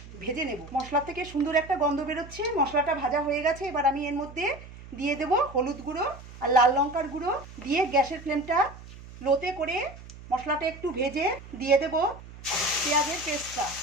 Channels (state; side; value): noise; right; hum, 16 dB below the sound